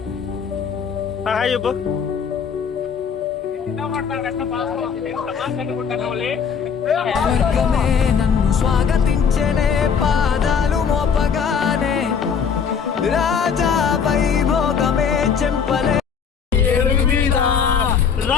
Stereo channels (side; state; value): right; quieter; 6.7 dB